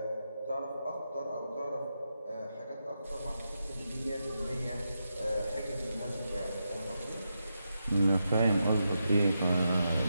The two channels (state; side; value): inverted; both; correlation -0.86